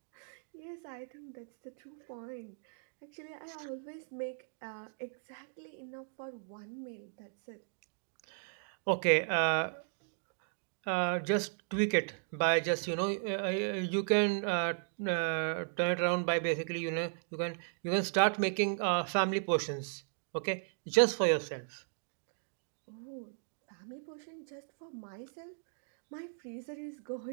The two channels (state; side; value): silent; left; digital silence